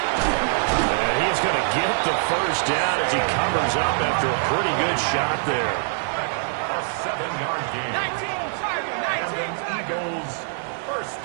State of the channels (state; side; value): silent; left; digital silence